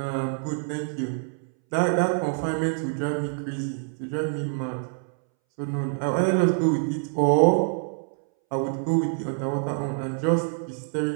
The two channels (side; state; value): left; silent; 61 dB below the other